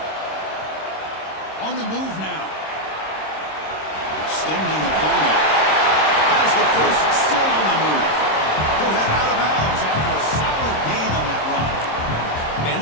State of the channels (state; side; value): late; right; 26 ms